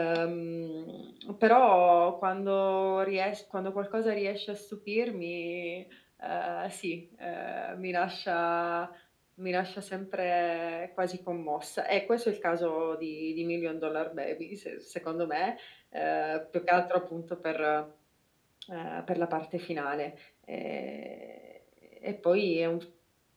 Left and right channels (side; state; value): both; identical; correlation 1.00